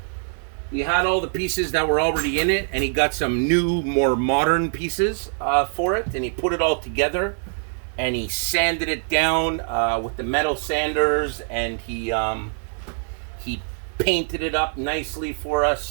all the pieces that were already in it, and he got some new, more modern pieces for it, and he put it all together, and he sanded it down with the metal sanders, and he painted it up nicely for us.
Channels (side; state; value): left; silent; digital silence